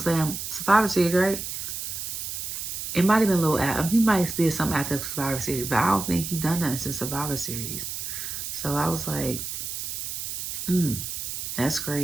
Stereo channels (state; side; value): noise; right; hiss, 5 dB below the sound